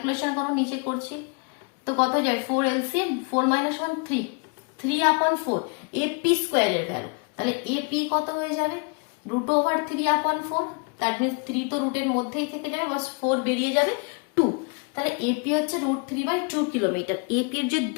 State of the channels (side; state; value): right; quieter; 34.8 dB